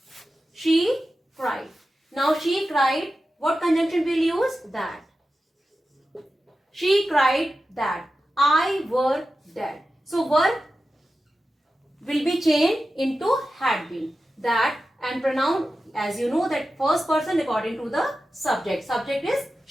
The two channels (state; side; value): normal; both; correlation 0.93